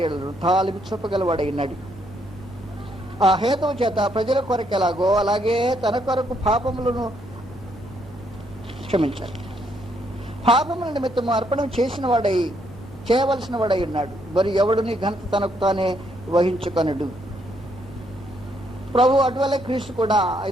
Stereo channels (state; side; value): normal; both; correlation 0.73